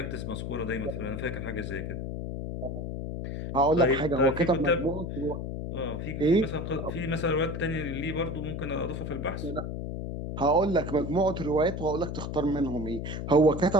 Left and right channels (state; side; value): noise; left; hum, 5 dB below the sound